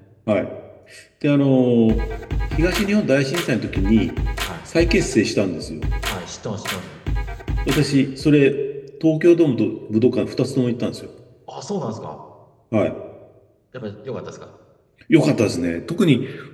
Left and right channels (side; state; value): both; identical; correlation 1.00